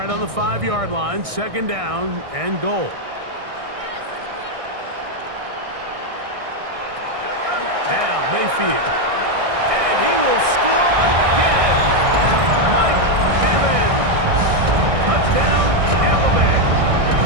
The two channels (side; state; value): left; late; 1.6 ms